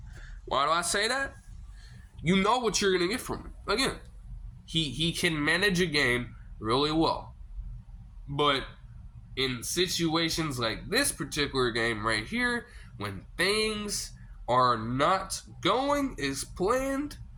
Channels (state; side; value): identical; both; correlation 1.00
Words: Why do I say that? You know what you're going to get from him. Again, he can manage a game really well. But in situations like this particular game right here, when things are not going as planned,